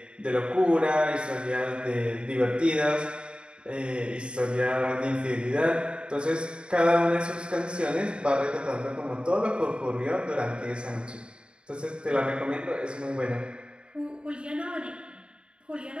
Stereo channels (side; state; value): left; late; 0.053 ms